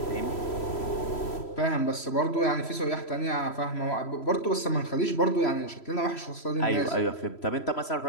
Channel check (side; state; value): right; late; 3.1 ms